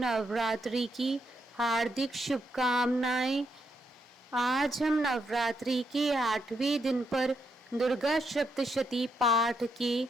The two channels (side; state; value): both; normal; correlation 0.79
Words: की हार्दिक शुभकामनाएं। आज हम नवरात्रि के 8वें दिन पर दुर्गा सप्तशती पाठ के